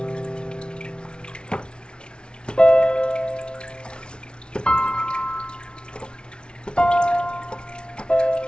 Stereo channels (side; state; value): right; late; 0.056 ms